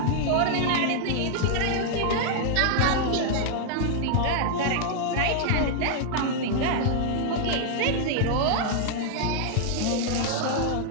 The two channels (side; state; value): both; different; correlation 0.00